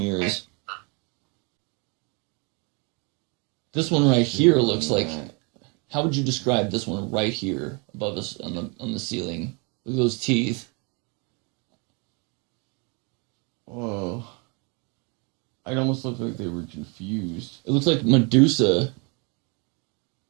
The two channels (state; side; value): quieter; left; 32.4 dB